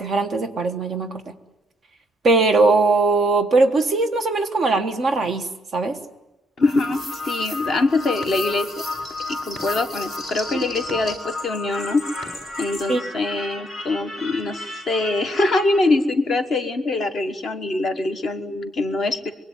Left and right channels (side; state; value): both; normal; correlation 0.72